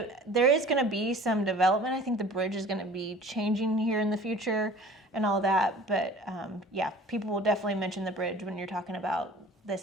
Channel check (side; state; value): both; normal; correlation 0.46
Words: is going to be some development. I think the bridge is going to be changing here in the future and all that. But yeah, people will definitely mention the bridge when you're talking about